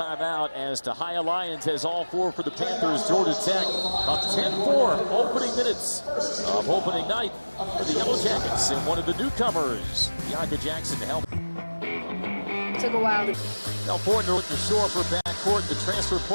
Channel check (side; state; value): both; inverted; correlation -1.00